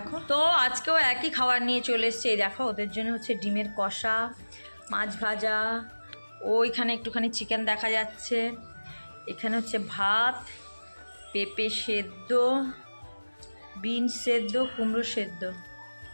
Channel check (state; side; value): inverted; both; correlation -1.00